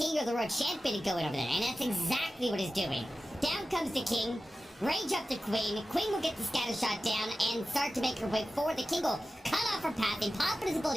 or the Road Champion to go in over there, and that's exactly what he's doing. Down comes the King, range up the Queen. Queen will get the scatter shot down and start to make her way forward. The King will cut off her path and pop his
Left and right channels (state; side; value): normal; both; correlation 0.94